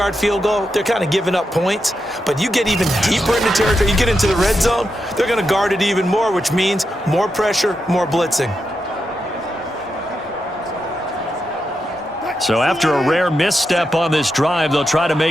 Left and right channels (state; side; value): normal; both; correlation 0.86